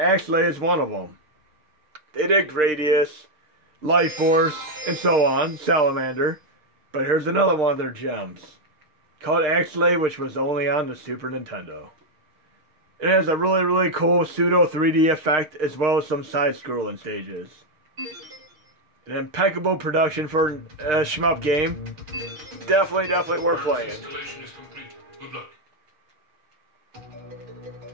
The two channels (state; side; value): late; left; 6.6 ms